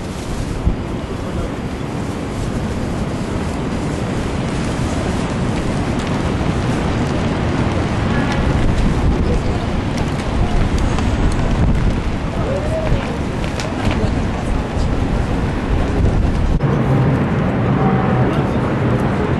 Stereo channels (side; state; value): both; identical; correlation 1.00